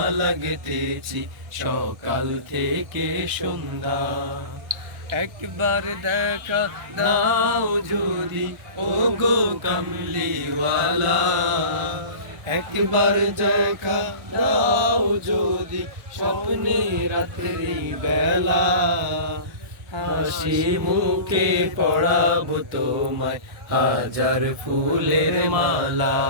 লাগতেছি সকাল থেকে সন্ধ্যা। একবার দেখা দাও যদি ও গো কামলিওয়ালা, একবার দেখা দাও যদি স্বপ্নে রাত্রি বেলা। হাসি মুখে পড়াবো তোমায় হাজার ফুলের মালা।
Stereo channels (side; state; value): left; late; 1.2 ms